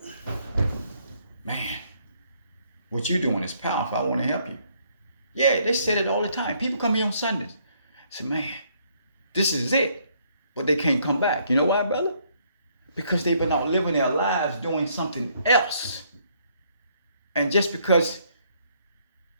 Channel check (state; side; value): inverted; both; correlation -0.68